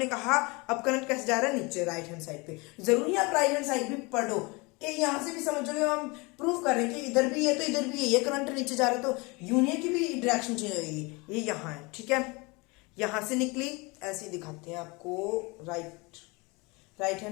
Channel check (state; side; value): quieter; right; 26.8 dB